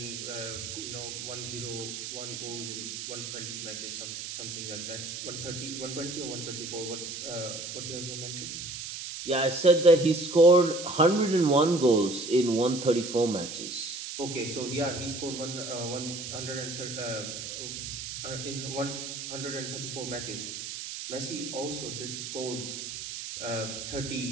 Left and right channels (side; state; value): right; noise; hiss, 7 dB below the sound